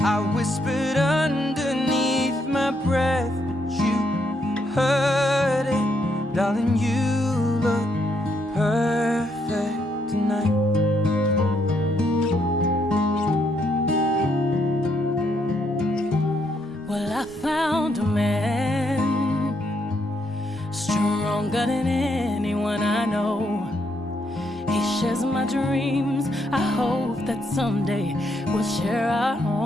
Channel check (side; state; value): both; normal; correlation 0.75